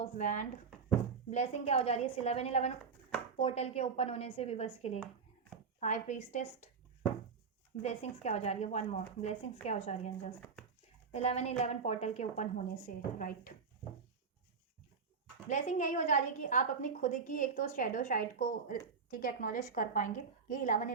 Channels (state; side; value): quieter; left; 5.4 dB